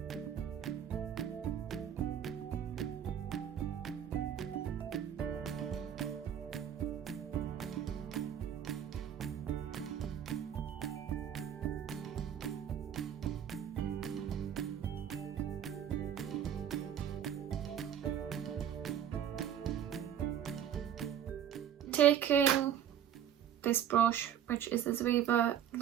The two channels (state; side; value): quieter; left; 9.6 dB